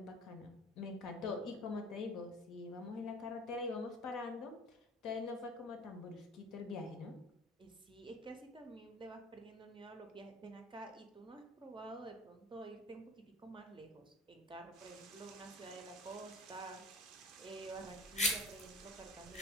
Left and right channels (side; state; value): both; normal; correlation 0.44